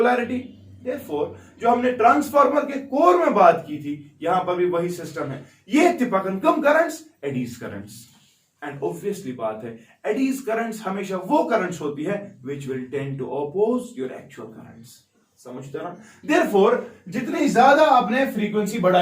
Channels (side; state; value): both; identical; correlation 1.00